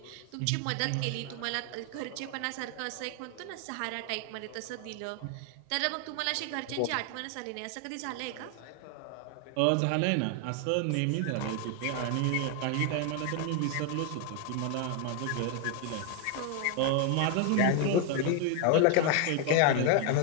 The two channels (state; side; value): different; both; correlation 0.01